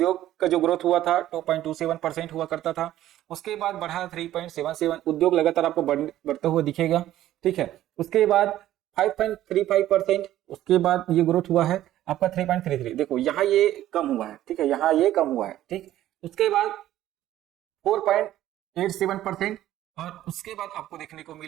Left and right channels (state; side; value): quieter; left; 13.4 dB